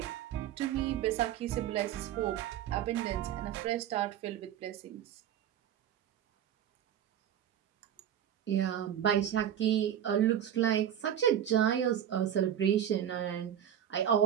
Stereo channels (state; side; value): quieter; left; 10.2 dB